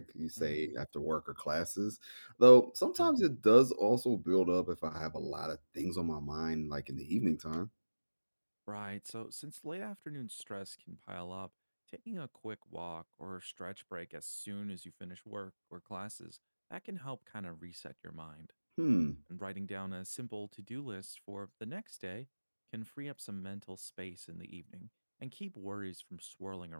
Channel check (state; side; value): inverted; both; correlation -1.00